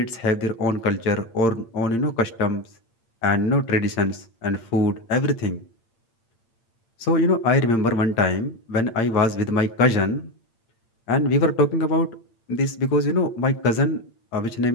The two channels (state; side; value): late; right; 8.7 ms